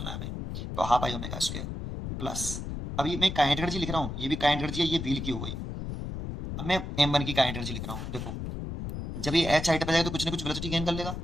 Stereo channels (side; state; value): left; noise; rumble, 6 dB below the sound